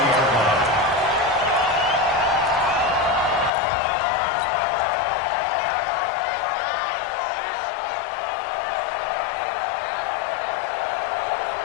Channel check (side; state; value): right; drops out; at 3.5 s